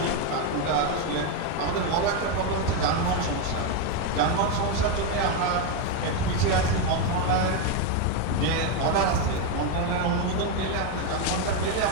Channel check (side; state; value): both; different; correlation 0.02